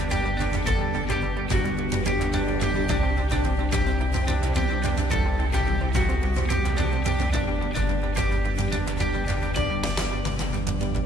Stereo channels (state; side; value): normal; both; correlation 0.69